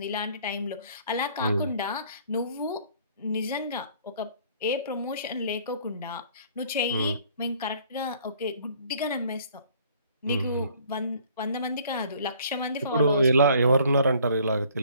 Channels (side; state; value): both; inverted; correlation -0.57